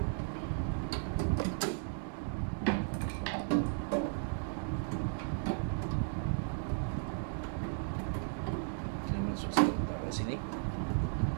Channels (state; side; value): silent; left; digital silence